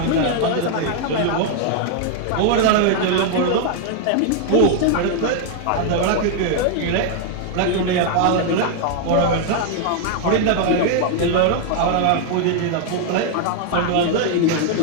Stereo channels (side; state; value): both; different; correlation 0.00